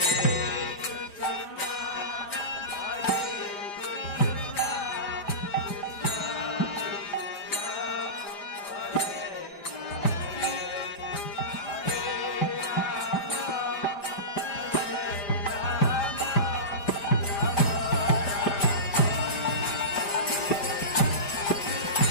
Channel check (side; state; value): right; late; 5.0 ms